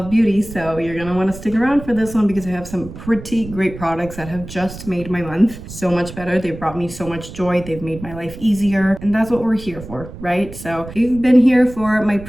beauty, so you're gonna wanna stick around for this one because I have some pretty great products that have just made my month so much better. They've brought me so much joy, they've made my life easier, and that's what we're here for, right? So if you've been here for my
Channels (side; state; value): right; noise; rumble, 13 dB below the sound